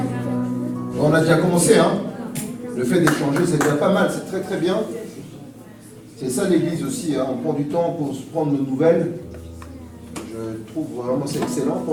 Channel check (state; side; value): identical; both; correlation 1.00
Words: On a déjà commencé, hein. Le fait d'échanger, c'est déjà pas mal, c'est très très bien. C'est ça l'église aussi, hein. On prend du temps pour se prendre de nouvelles. Je trouve vraiment c'est excellent.